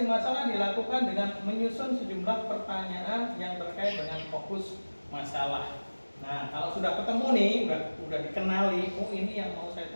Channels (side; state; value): both; inverted; correlation -1.00